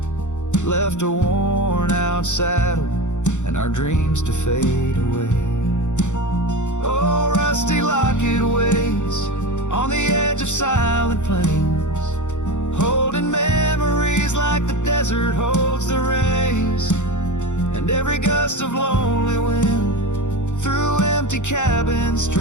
Left a worn out saddle and our dreams to fade away. Oh, rusty locket waits on the edge of silent plains, holding memories like the desert holds the rays. And every gust of lonely wind through empty cabin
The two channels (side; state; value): right; late; 0.85 ms